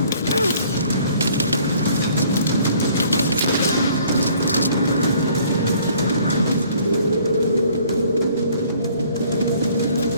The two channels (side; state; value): both; inverted; correlation -0.58